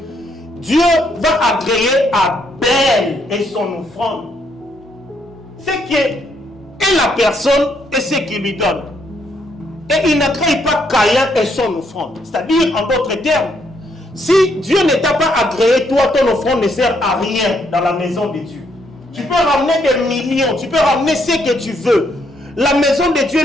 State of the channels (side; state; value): both; normal; correlation 0.73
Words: Dieu va agréer Abel et son offrande. Ce qui est la personne et ce qu'il lui donne. Et il n'agrée pas Caïn et son offrande. C'est-à-dire, en d'autres termes, si Dieu ne t'a pas agréé, toi, ton offrande ne sert à rien dans la maison de Dieu. Tu peux ramener des millions, tu peux ramener ce que tu veux. La maison de